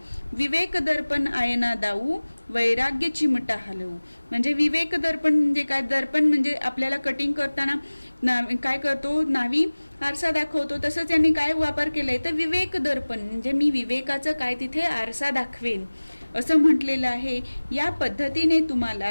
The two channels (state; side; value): inverted; both; correlation -1.00